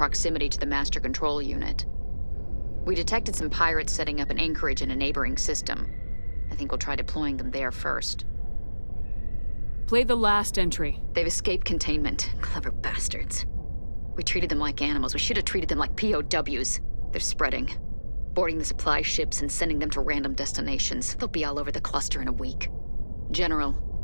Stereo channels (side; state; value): both; inverted; correlation -1.00